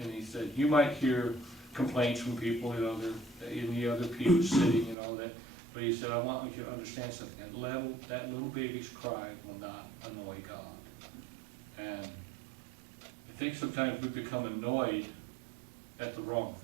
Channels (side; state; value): left; drops out; at 5.0 s